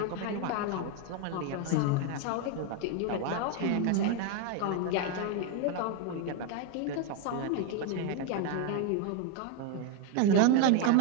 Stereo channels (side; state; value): both; different; correlation 0.01